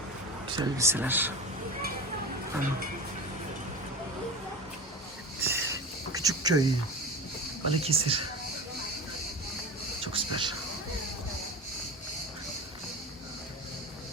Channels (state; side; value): normal; both; correlation 0.28